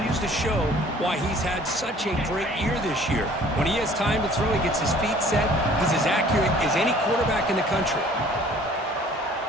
to show why he's had such a great year this year. When he has time to throw, he gets his feet set. He's as accurate as any quarterback in the country.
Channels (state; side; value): normal; both; correlation 0.53